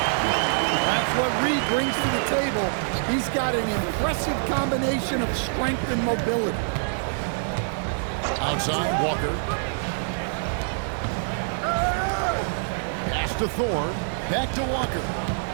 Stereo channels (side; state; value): left; silent; digital silence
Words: That's what Reed brings to the table. He's got an impressive combination of strength and mobility. Outside, Walker. Pass to Thor. Back to Walker.